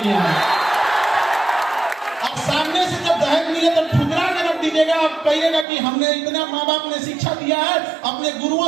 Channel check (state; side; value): drops out; left; at 5.7 s